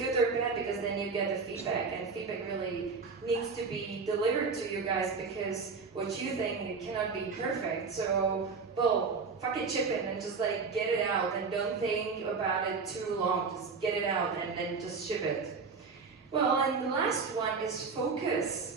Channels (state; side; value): quieter; left; 4.9 dB